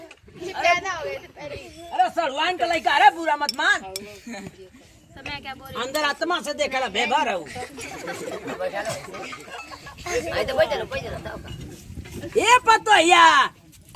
ये पैदा हो गए थे पहले। अरे सलवान का लइका अरे बुरा मत मान। तो मैं क्या बोल रही अंदर आत्मा से देखला बेबार हूं। आई तो बैठ जा। ए पतोहिया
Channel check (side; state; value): both; identical; correlation 1.00